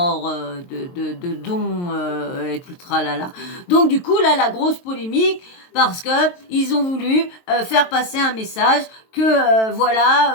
de dons et tout le tralala. Donc du coup là, la grosse polémique, parce que ils ont voulu faire passer un message que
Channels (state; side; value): late; right; 23 ms